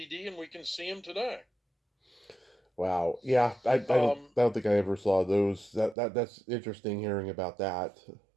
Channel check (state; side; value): drops out; left; at 6.0 s